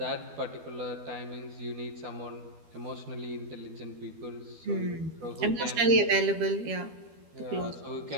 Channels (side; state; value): left; late; 12 ms